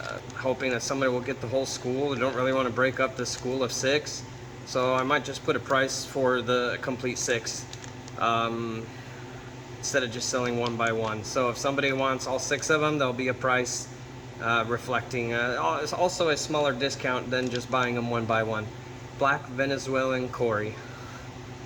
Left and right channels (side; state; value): both; identical; correlation 1.00